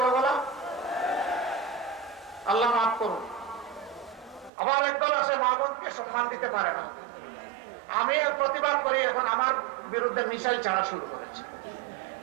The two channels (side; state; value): left; drops out; at 4.5 s